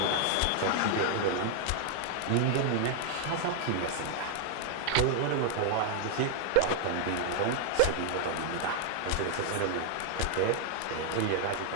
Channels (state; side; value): different; both; correlation 0.00